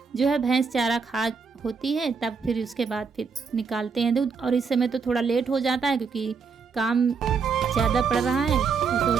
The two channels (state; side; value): quieter; left; 5.4 dB